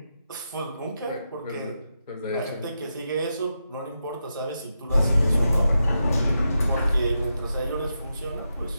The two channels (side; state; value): both; inverted; correlation -0.86